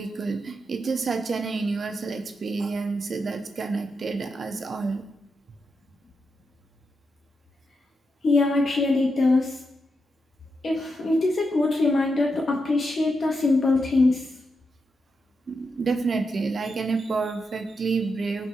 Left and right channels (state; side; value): normal; both; correlation 0.85